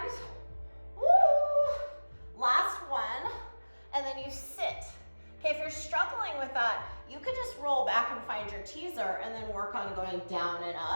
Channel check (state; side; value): inverted; both; correlation -1.00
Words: Woo! Last one, and then you sit. Okay, if you're struggling with that, you could just roll back and find your teaser and then work on going down and